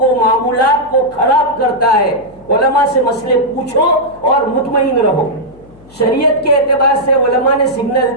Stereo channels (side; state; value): left; noise; hum, 25 dB below the sound